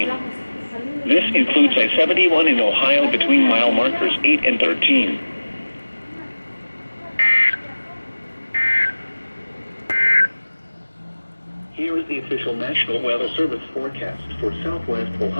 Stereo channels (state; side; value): inverted; both; correlation -1.00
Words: This includes I-71 in Ohio between mile markers 8 and 13. Here is the official National Weather Service forecast for southwest